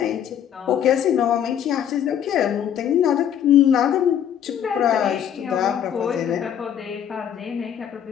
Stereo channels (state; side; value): quieter; right; 9.4 dB